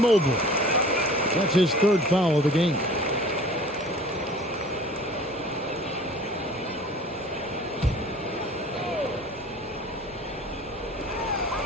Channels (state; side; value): normal; both; correlation 0.45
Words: That's his 3rd foul of the game.